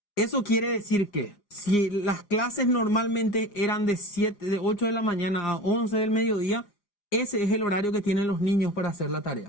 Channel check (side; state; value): right; late; 4.9 ms